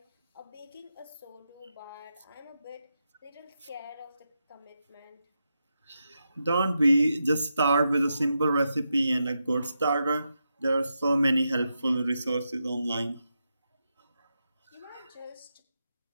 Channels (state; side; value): inverted; both; correlation -0.86